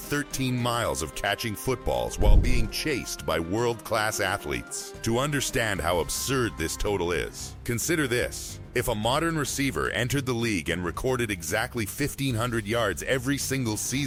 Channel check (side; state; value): both; identical; correlation 1.00